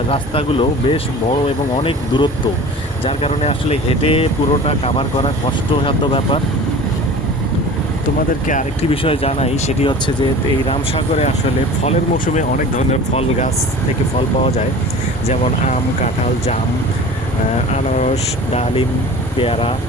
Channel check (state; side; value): normal; both; correlation 0.40